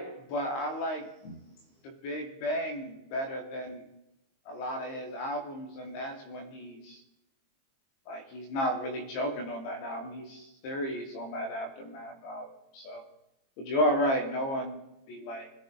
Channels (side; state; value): right; late; 22 ms